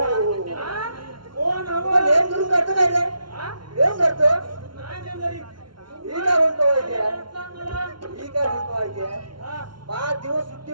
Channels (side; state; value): left; late; 0.73 ms